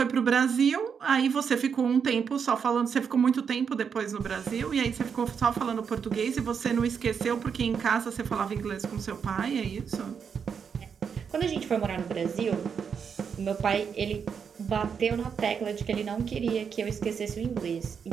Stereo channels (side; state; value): left; quieter; 6.7 dB